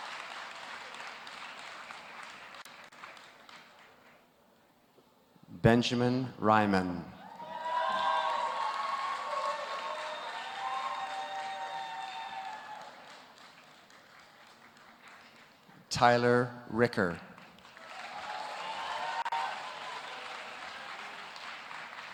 Benjamin Ryman. Tyler Ricker.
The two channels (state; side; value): identical; both; correlation 1.00